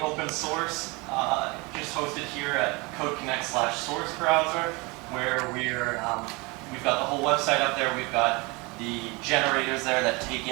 open source, just hosted here at CodeConnect/Source Browser, where we've got the whole website up there. We've got the generators there that take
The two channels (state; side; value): quieter; left; 26.4 dB